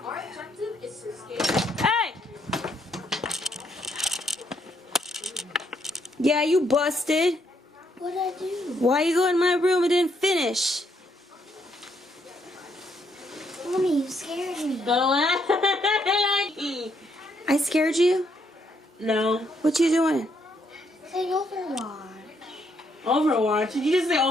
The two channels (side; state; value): both; normal; correlation 0.73